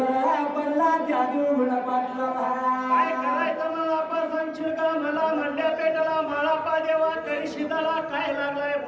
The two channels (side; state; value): both; identical; correlation 1.00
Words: पडला त्या देवगुंडा पाटला काय करायचं मला आपा सांगशील का मला म्हणल्या पेटाला माळापा देवा तरी शिदाला काय लागलाय